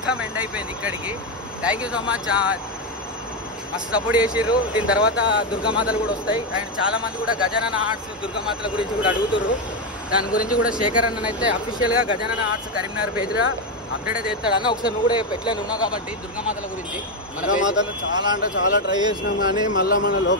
ఎండ్ అయిపోయింది ఇక్కడికి. థ్యాంక్ యూ సో మచ్, మస్తు సపోర్ట్ చేసిర్రు. దీని తర్వాత దుర్గామాతలు కూడా వస్తాయి. అండ్ చాలా మంది కూడా గజానన ఆర్ట్స్ దుర్గామాతల గురించి కూడా అడుగుతుర్రు. దాని గురించి కూడా శేఖర్ అన్న అయితే అఫీషియల్ గా గజానన ఆర్ట్స్ కరీంనగర్ పేజ్ లో అప్డేట్ అయితే చేస్తాడు అన్న. ఒకసారి నువ్వు కూడా ఎట్లా ఉన్నావు కాబట్టి దుర్గామాతల గురించి. దుర్గామాతలు చాలా అంటే చాలా ట్రై చేసినాం, కానీ మళ్ళీ మన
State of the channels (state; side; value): normal; both; correlation 0.07